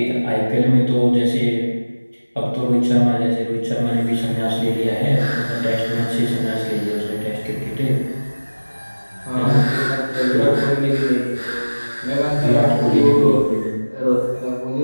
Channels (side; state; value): both; inverted; correlation -1.00